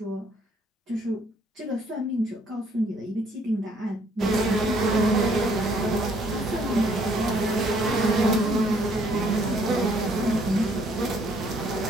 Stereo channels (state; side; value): normal; both; correlation 0.64